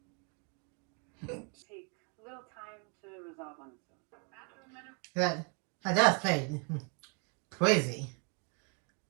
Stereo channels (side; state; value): left; quieter; 36.3 dB